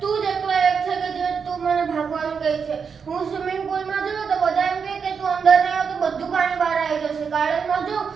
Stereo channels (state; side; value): quieter; left; 6.1 dB